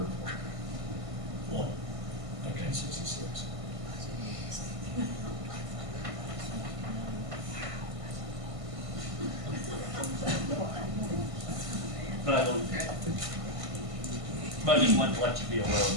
for it. One. Okay. 1966. But I don't, but I just wanted to let you be aware of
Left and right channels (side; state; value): left; late; 1.5 ms